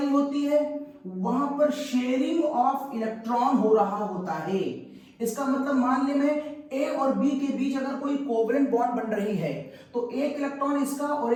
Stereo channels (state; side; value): identical; both; correlation 1.00